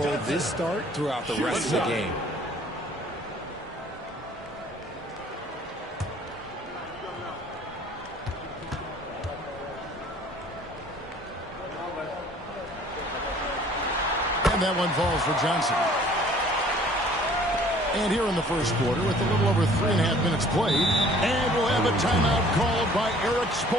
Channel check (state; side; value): normal; both; correlation 0.54